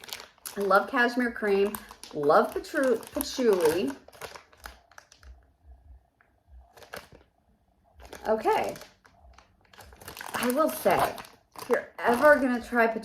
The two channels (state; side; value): identical; both; correlation 1.00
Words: I love cashmere cream. Love patchouli. Okay. I will say, if you're ever going to try